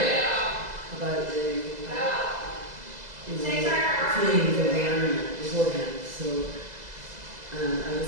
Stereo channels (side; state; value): left; late; 2.0 ms